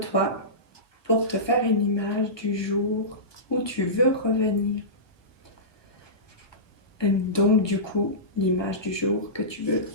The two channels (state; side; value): late; right; 1.4 ms